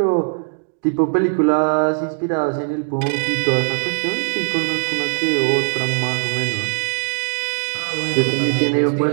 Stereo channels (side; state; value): left; silent; digital silence